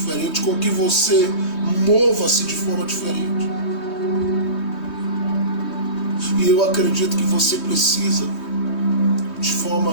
com que você mova-se de forma diferente. E eu acredito que você precisa, de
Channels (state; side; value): late; right; 3.2 ms